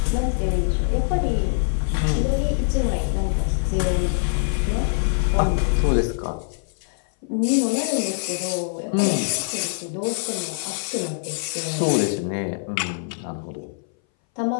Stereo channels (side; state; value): right; silent; 60 dB below the other